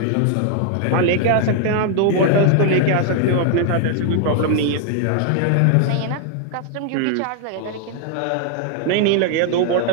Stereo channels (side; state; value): both; different; correlation 0.00